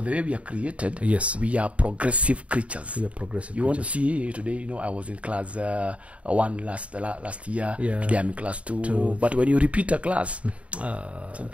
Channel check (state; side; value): late; left; 0.064 ms